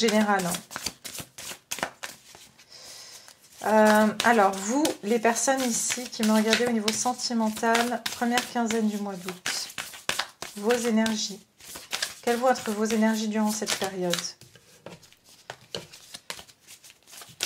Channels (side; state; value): both; identical; correlation 1.00